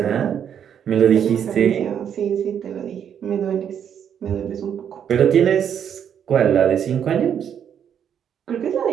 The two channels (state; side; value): quieter; left; 8.6 dB